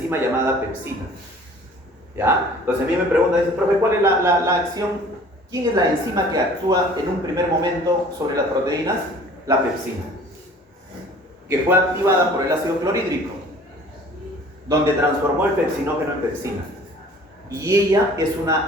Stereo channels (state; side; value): normal; both; correlation 0.49